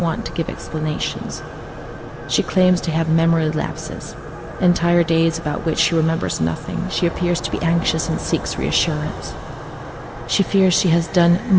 to give explanations. She claims to have memory lapses, entire days about which she remembers nothing. She appears to be anxious and seeks reassurance. She fears she has done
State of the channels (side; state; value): both; identical; correlation 1.00